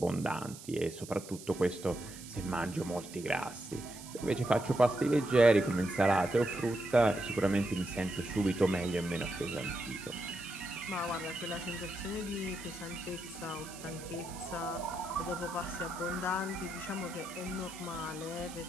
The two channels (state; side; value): noise; right; hiss, 15 dB below the sound